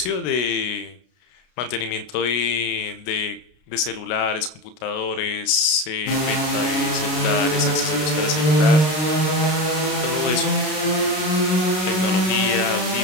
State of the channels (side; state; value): right; late; 33 ms